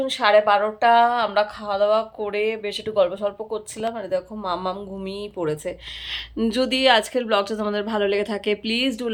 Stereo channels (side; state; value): both; identical; correlation 1.00